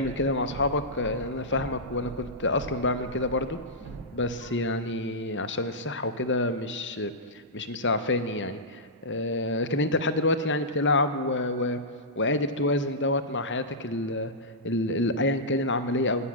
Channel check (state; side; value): normal; both; correlation -0.13